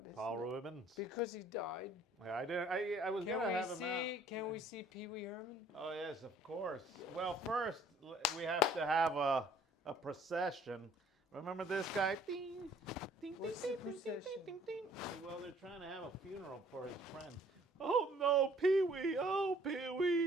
Paul Rubens. because he died. Yeah, I didn't. I was gonna have him out. Can we see Pee Wee Herman? Oh yes, of course. Well, first we have to have a procession. Remember this guy? Ding, ding, ding, What's ding, the ding, ding, procession? ding, ding. Well, they're trying to have a funeral for his friend. Oh no, Pee Wee! Oh Pee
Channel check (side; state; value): both; normal; correlation 0.57